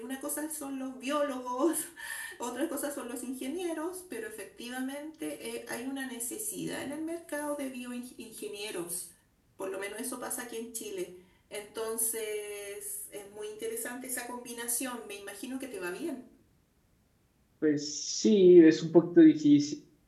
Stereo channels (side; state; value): both; identical; correlation 1.00